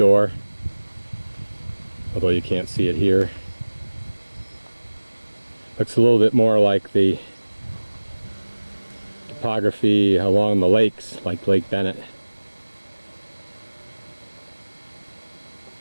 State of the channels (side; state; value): both; inverted; correlation -1.00